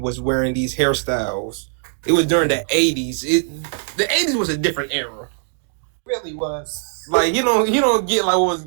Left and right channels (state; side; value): silent; left; digital silence